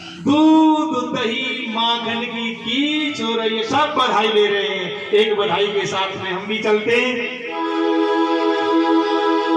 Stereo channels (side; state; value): both; identical; correlation 1.00